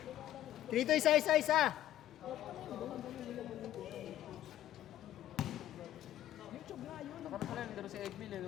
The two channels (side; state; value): right; quieter; 12.6 dB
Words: Dito, isa. Nakarap pala, nandaro si Egbil eh,